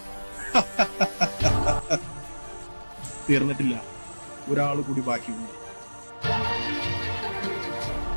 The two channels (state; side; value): inverted; both; correlation -1.00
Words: തീർന്നിട്ടില്ല, ഒരാൾ കൂടി ബാക്കിയുണ്ട്.